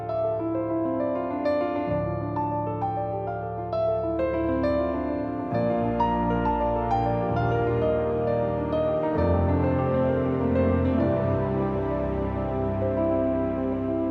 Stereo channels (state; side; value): identical; both; correlation 1.00